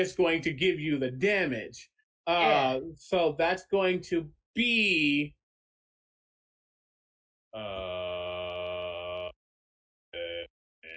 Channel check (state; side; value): identical; both; correlation 1.00